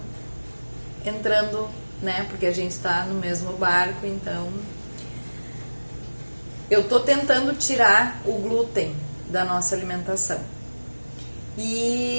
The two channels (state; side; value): inverted; both; correlation -1.00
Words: entrando, né? Porque a gente tá no mesmo barco, então eu tô tentando tirar o glúten da nossa alimentação.